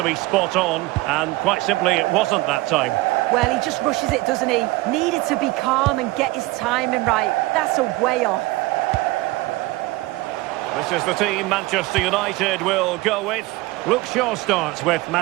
be spot on. And quite simply, it wasn't that time. Well, he just rushes it, doesn't he? Needed to be calm and get his timing right. That's a way off. This is the team Manchester United will go with. Luke Shaw starts with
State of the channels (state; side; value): quieter; left; 20.2 dB